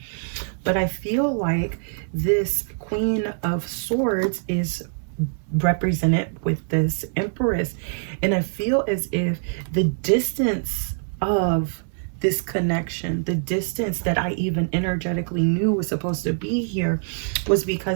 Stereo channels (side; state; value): left; silent; 63 dB below the other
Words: But I feel like this Queen of Swords is represented with this Empress. And I feel as if the distance of this connection, the distance that I even energetically knew was supposed to be here, was